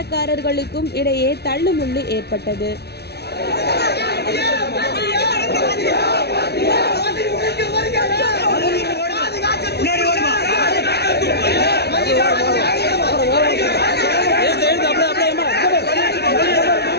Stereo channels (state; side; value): late; right; 0.48 ms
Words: இடையே தள்ளுமுள்ளு ஏற்பட்டது.